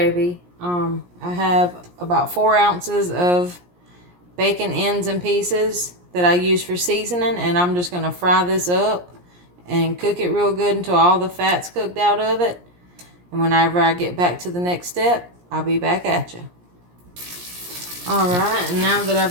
I have about 4 ounces of bacon ends and pieces that I use for seasoning, and I'm just going to fry this up and cook it real good until all the fat's cooked out of it. And whenever I get back to the next step, I'll be back at you. Alright, and now that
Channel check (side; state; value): left; late; 17 ms